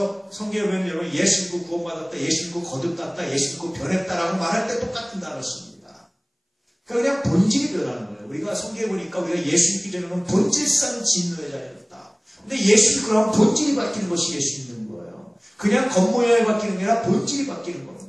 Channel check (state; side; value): identical; both; correlation 1.00